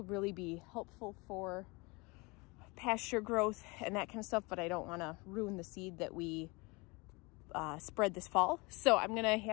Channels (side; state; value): right; quieter; 26.7 dB